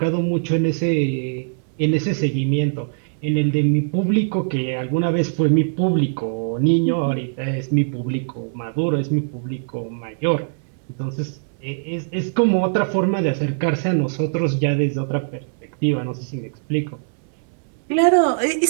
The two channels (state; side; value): silent; left; digital silence